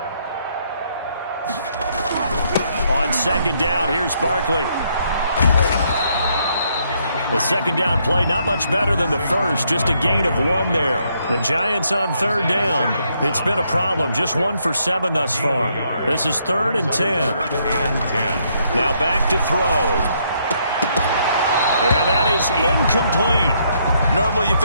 On 2nd down, here's Barkley. The 2nd down play, not much better than the first, just a gain of 1 there. The Giants on 3rd down. It's been a problem, just 1 for 7 thus far. This is 3rd and 10. Now back to throw. And that is incomplete. Normally you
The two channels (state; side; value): inverted; both; correlation -0.73